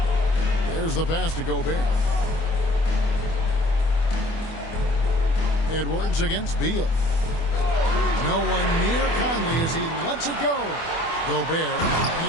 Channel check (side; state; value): right; late; 24 ms